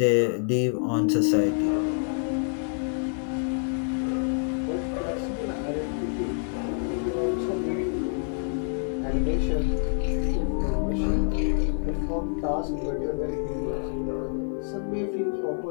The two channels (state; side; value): silent; right; 60 dB below the other